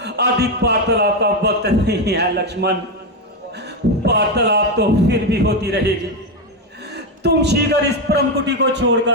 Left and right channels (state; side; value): normal; both; correlation 0.09